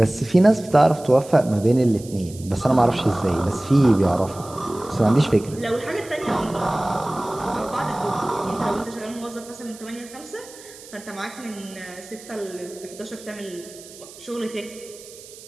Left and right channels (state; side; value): noise; right; hiss, 18 dB below the sound